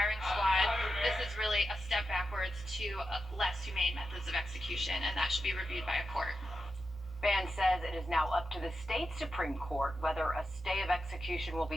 squad, this is really a step backwards to less humane methods of execution, and that should be reviewed by a court. Ban says it is now up to the state Supreme Court whether a stay of execution will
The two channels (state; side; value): normal; both; correlation 0.89